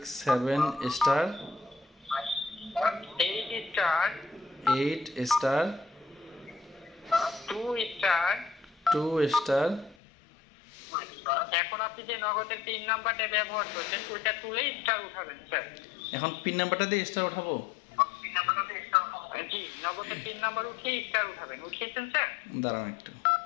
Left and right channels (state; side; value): drops out; right; at 10.0 s